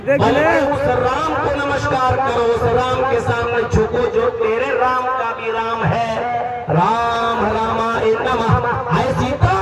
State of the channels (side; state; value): both; identical; correlation 1.00